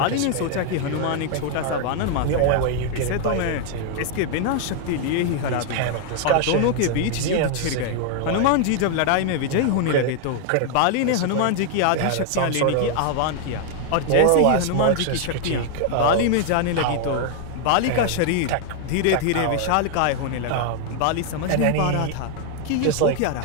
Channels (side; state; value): both; different; correlation 0.00